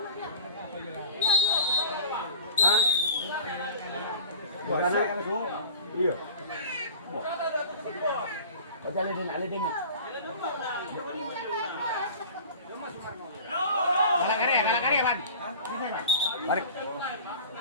Hah? Bukan iya. Kau jalan alidin. Kalah kari, Pan. Tarik.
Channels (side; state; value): both; inverted; correlation -0.40